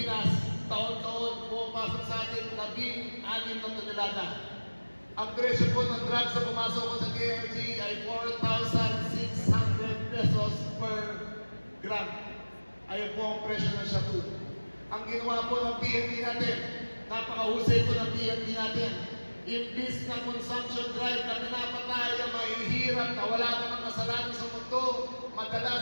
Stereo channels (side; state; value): both; inverted; correlation -1.00